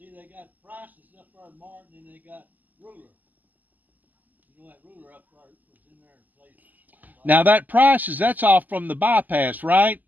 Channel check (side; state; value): left; late; 0.083 ms